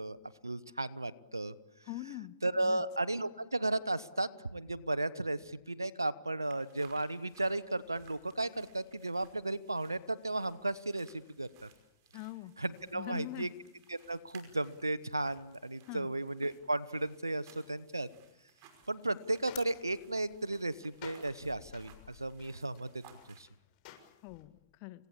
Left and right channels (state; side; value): inverted; both; correlation -0.91